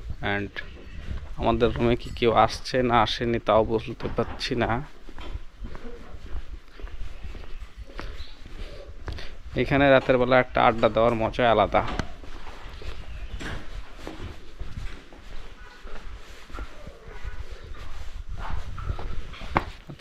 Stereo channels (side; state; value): both; identical; correlation 1.00